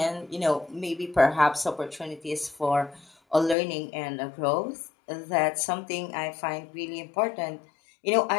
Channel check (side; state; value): right; drops out; at 3.6 s